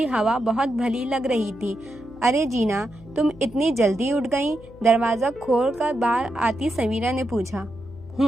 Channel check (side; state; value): left; noise; hum, 21 dB below the sound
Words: हवा बहुत भली लग रही थी। अरे जीना, तुम इतनी जल्दी उठ गई? दरवाजा खोलकर बाहर आती समीरा ने पूछा।